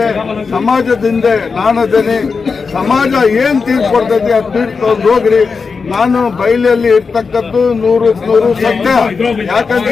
ಸಮಾಜದಿಂದ ನಾನದೇನೆ. ಸಮಾಜ ಏನ್ ತೀರ್ಪು ಕೊಡ್ತೈತಿ ಅದು ತೀರ್ಪು ತಗೊಂಡು ಹೋಗ್ರಿ. ನಾನು ಬಯಲಲ್ಲಿ ಇರ್ತಕ್ಕದ್ದು 100% ಸತ್ಯ. ಯಾಕಂತ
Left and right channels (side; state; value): right; quieter; 5.0 dB